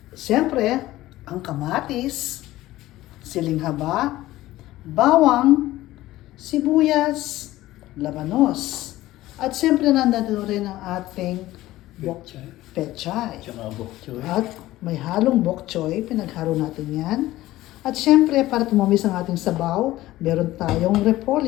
Syempre, ang kamatis, siling haba, bawang, sibuyas, labanos. At syempre, nandito rin ang ating Pechay. pechay. Tsaka bok choy. At may halong bok choy, pinaghalo natin yan. At syempre, para tumamis ang ating sabaw, meron tayong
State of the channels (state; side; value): quieter; right; 16.3 dB